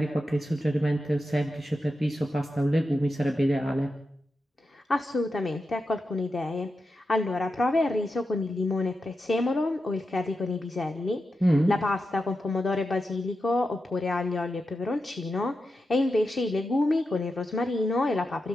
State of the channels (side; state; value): both; normal; correlation 0.89